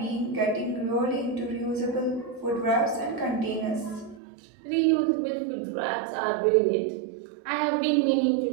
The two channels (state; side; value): drops out; left; at 4.2 s